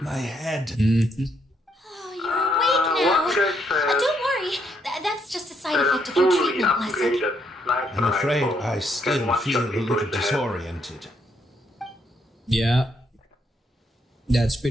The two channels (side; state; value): both; normal; correlation 0.74